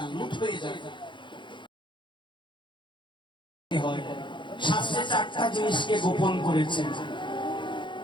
লুট হয়ে যায়। শাস্ত্রে 4টা জিনিসকে গোপন করেছেন,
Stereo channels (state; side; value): late; right; 0.23 ms